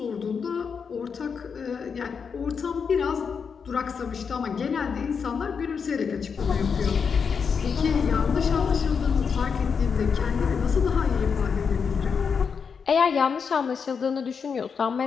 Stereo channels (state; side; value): quieter; right; 6.1 dB